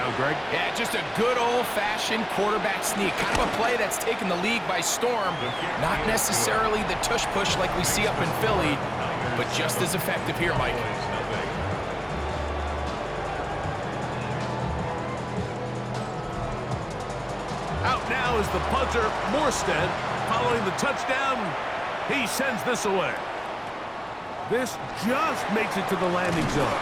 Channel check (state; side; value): identical; both; correlation 1.00